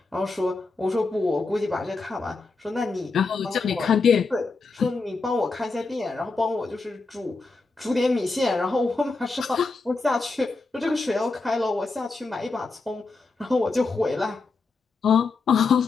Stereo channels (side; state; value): right; quieter; 3.9 dB